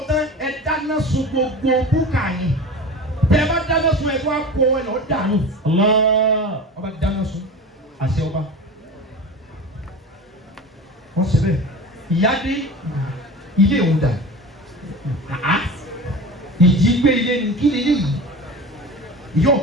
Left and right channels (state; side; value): normal; both; correlation 0.33